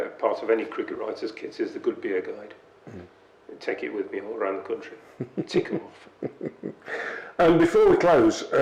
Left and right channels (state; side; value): identical; both; correlation 1.00